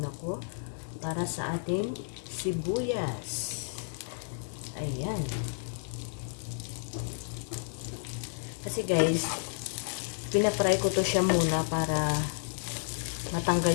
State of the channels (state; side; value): silent; right; digital silence